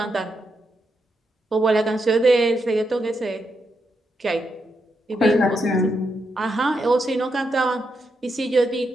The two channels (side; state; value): both; normal; correlation 0.82